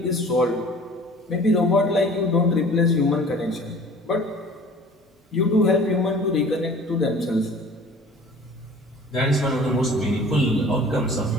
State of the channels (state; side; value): normal; both; correlation 0.46